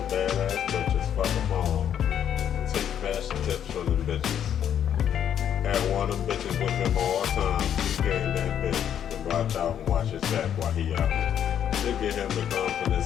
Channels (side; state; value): right; quieter; 9.4 dB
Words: badass bitches. Fuck them all. Take fashion tips from them bitches. Had one of them bitches with him all the time. He came that bitch to watch out and watch his back while he out. To get him the